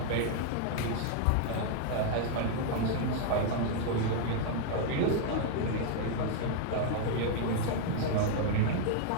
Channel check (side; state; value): both; different; correlation 0.00